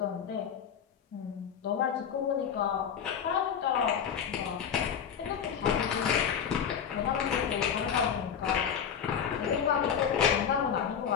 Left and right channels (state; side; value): quieter; right; 7.9 dB